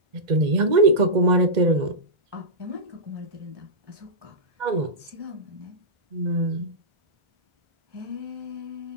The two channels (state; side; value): late; left; 2.0 ms